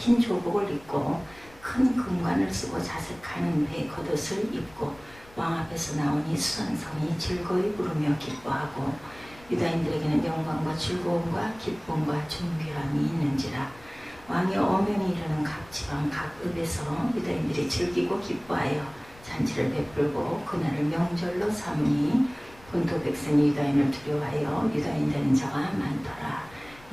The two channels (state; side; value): noise; left; rumble, 24 dB below the sound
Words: 조복을 입고 큰 금관을 쓰고 자색하는 배 겉옷을 입고 왕 앞에서 나오니 수산성이 즐거이 부르며 기뻐하고 유다인들에게는 영광과 즐거움과 기쁨과 존귀함이 있는지라. 왕이 어명이 이르는 각 지방 각 읍에서 유다인들이 즐기고 기뻐하여 잔치를 베풀고 그날을 명절로 삼으니 본토 백성이 유다인을 두려워하여 유다인 되는 자가 많더라.